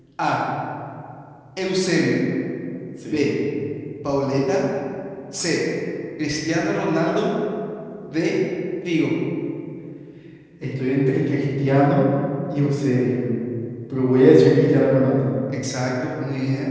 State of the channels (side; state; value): both; identical; correlation 1.00